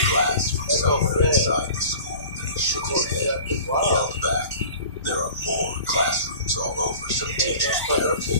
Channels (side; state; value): both; inverted; correlation -0.42